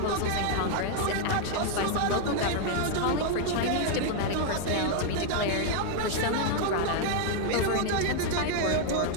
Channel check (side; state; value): both; different; correlation 0.00